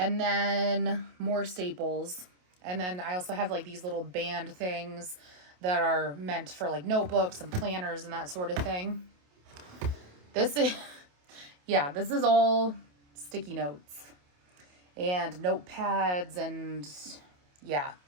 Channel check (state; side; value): late; left; 28 ms